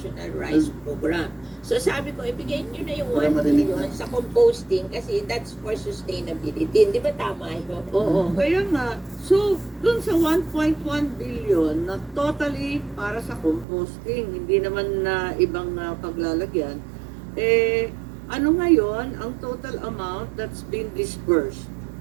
Rice Program. So sabi ko, ibigay nyo na yung Para 1 marinig billion na. sa composting kasi that's for sustainability. Di ba tama ito? Oo. Kaya nga, so, dun sa 1.1 billion na totally para sa composting, hindi naman na ibang paglalagyan, ano ngayon ang total amount that's been disbursed?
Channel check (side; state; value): left; drops out; at 13.7 s